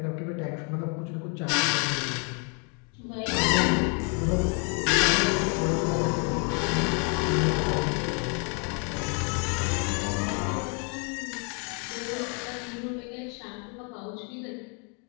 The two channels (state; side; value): quieter; right; 37.7 dB